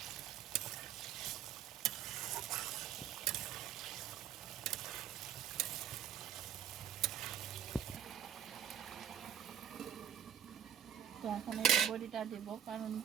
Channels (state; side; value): quieter; left; 9.4 dB